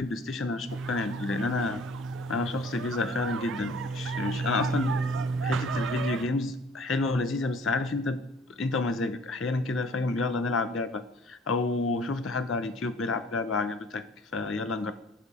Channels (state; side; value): normal; both; correlation 0.53